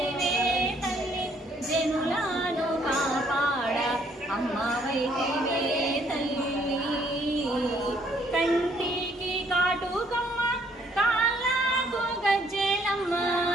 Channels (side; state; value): both; normal; correlation 0.66